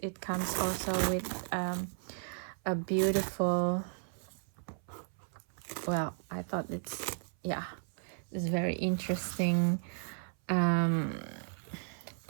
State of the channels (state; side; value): silent; left; 55 dB below the other